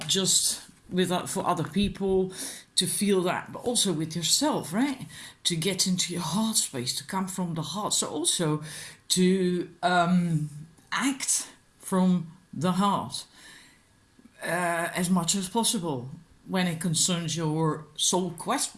just for other people to feel that, but also with yourself, right? To get into your heart space, to come from the heart. So also to act from the heart as much as possible when it concerns your soul quest,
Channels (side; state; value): both; identical; correlation 1.00